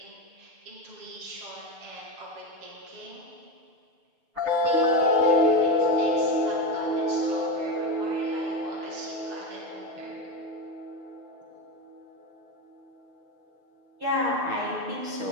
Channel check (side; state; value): left; late; 6.7 ms